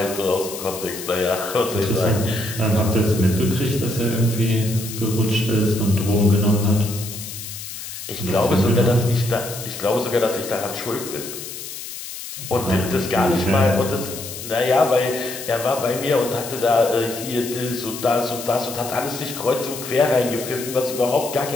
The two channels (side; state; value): left; noise; hiss, 10 dB below the sound